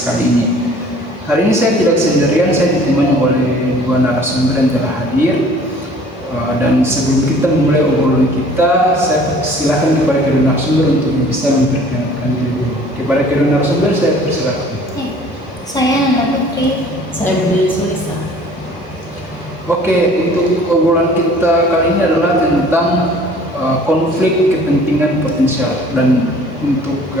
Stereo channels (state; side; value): normal; both; correlation 0.51